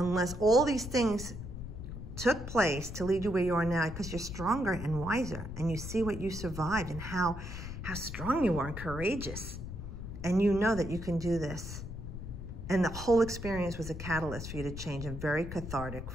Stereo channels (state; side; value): noise; left; rumble, 8 dB below the sound